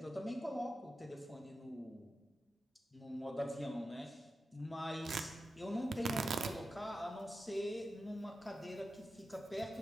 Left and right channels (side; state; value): both; normal; correlation 0.91